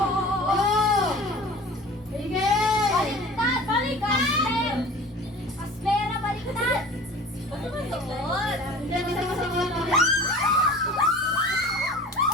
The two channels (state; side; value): normal; both; correlation 0.42